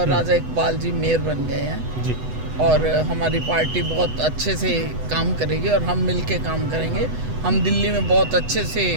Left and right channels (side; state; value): left; late; 8.0 ms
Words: राजा इकबाल जी मेयर बन गए हैं जी, और हमारी पार्टी बहुत अच्छे से काम करेगी और हम मिल के काम करेंगे। हम दिल्ली में बहुत अच्छे से